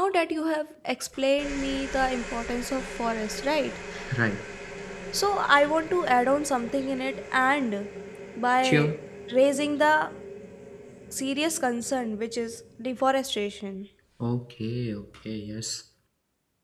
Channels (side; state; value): both; identical; correlation 1.00